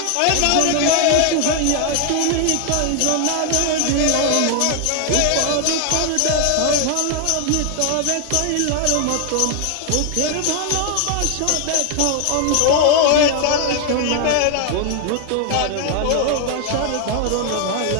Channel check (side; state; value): both; different; correlation 0.00